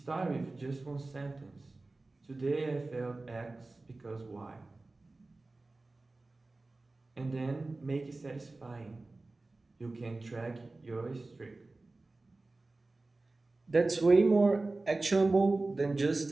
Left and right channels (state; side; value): quieter; left; 3.2 dB